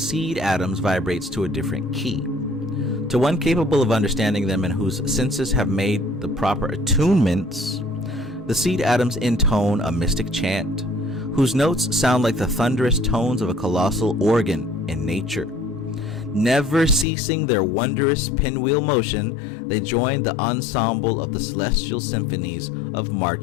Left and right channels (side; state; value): right; drops out; at 17.1 s